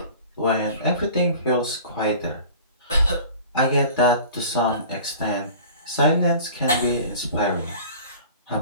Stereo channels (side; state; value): both; inverted; correlation -0.43